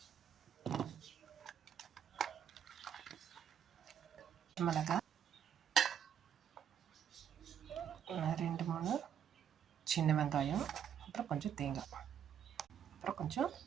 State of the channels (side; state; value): left; quieter; 8.7 dB